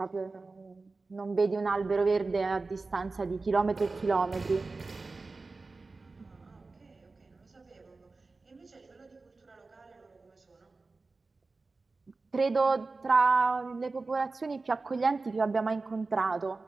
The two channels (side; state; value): left; quieter; 3.7 dB